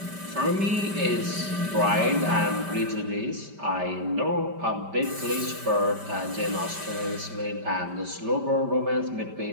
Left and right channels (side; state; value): left; late; 5.1 ms